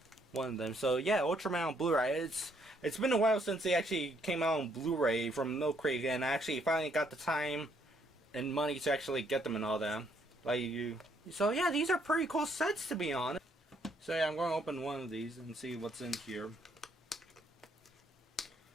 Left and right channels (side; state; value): both; normal; correlation 0.69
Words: of them. So yeah, Ultraman on Blu-ray. It's been a while since they actually came out on Blu-ray from Milk Creek, and I actually finally got the time and money to actually get them and all that. So yeah, these are pretty cool sets, to be honest. So yeah, I'm going to open one of these and see what's in here.